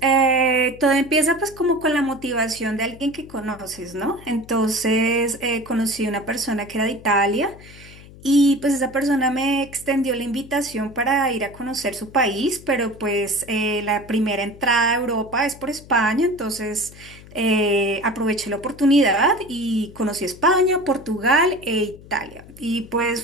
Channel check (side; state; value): left; noise; hum, 20 dB below the sound